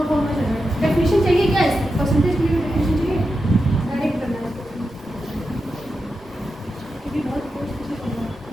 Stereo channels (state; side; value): normal; both; correlation 0.89